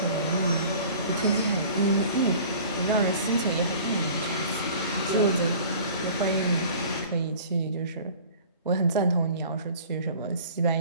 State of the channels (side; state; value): both; inverted; correlation -0.45